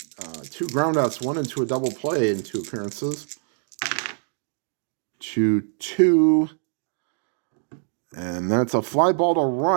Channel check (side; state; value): left; silent; 62 dB below the other